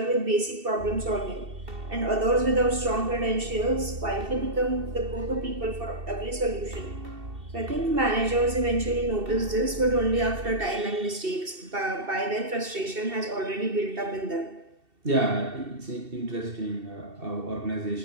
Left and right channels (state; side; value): late; left; 2.7 ms